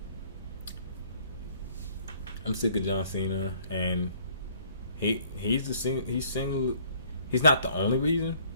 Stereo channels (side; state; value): both; inverted; correlation -0.59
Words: I'm sick of John Cena, and he's not the only reason,